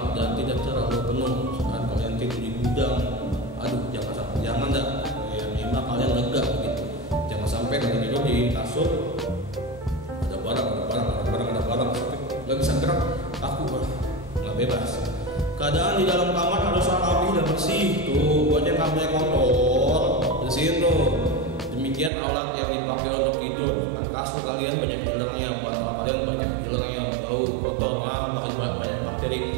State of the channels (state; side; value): drops out; left; at 22.1 s